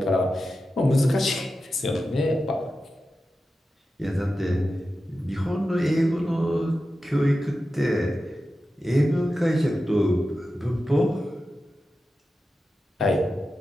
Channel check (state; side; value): normal; both; correlation 0.92